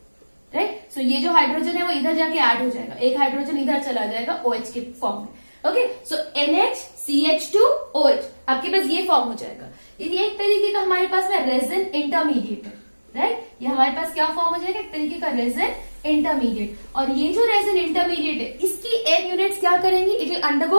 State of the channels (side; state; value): both; inverted; correlation -1.00